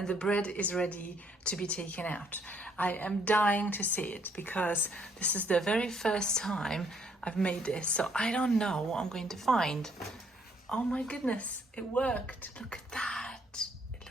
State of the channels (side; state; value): both; normal; correlation 0.67